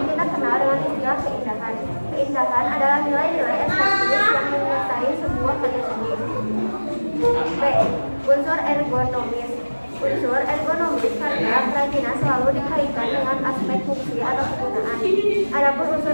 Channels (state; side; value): inverted; both; correlation -1.00